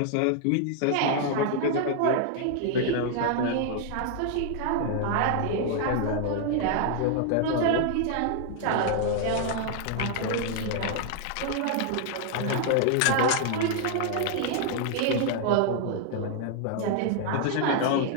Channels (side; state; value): both; different; correlation 0.00